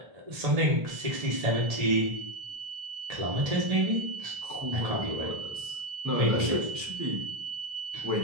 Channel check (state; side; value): late; left; 1.7 ms